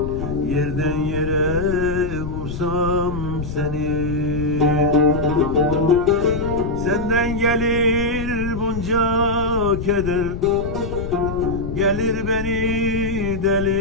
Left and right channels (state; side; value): noise; left; rumble, 7 dB below the sound